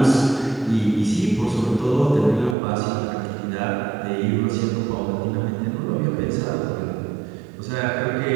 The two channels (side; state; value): left; drops out; at 2.6 s